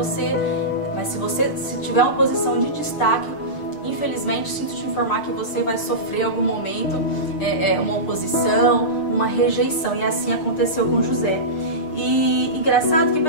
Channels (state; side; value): late; right; 6.6 ms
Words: Mas se tiver uma posição de destaque, infelizmente, sinto te informar que você vai sofrer em algum momento uma oposição, uma rejeição. E assim aconteceu com José. E engraçado que